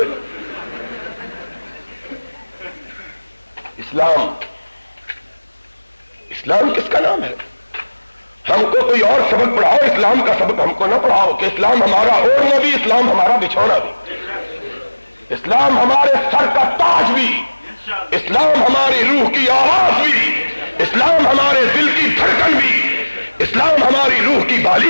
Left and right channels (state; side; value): inverted; both; correlation -1.00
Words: اسلام کس کا نام ہے؟ ہم کو کوئی اور سبق پڑھاؤ، اسلام کا سبق ہم کو نہ پڑھاؤ کہ اسلام ہمارا اوڑھنا بھی، اسلام ہمارا بچھونا بھی، اسلام ہمارے سر کا تاج بھی، اسلام ہماری روح کی آواز بھی، اسلام ہمارے دل کی دھڑکن بھی، اسلام ہماری روح کی